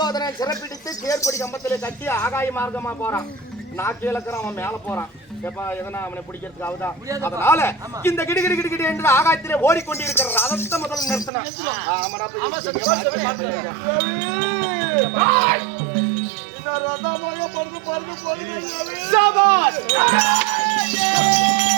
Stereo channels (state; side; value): drops out; left; at 11.3 s